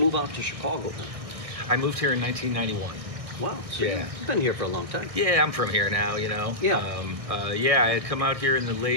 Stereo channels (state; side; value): late; left; 1.6 ms